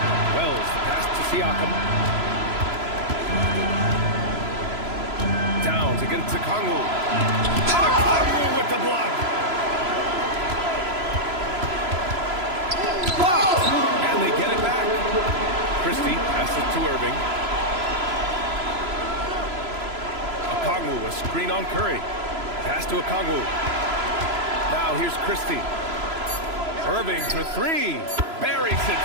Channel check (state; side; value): late; left; 3.0 ms